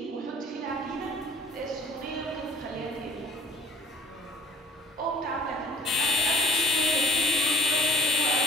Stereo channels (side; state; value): both; normal; correlation 0.50